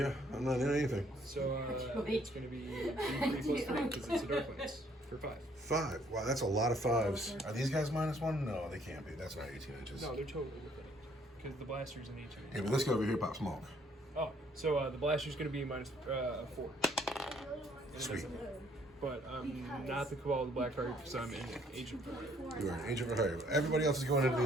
I'm not in anything. So it's going to be 3 plus 3 because it's a dark lens for 5. 5. Wow, that's a lot of 5s. Are these guys -1? No, they can't be. That's not 18 inches. No, they're totally within it because the blaster's an 18. Yeah, but this guy over here pop smoke. Oh, so the blaster's going to be -4. And it Sweet. doesn't matter. But I'm not the Cabal of the Black Heart because I'm an agent for it. You are an agent for hire. Everybody else is going into the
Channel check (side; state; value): both; normal; correlation 0.65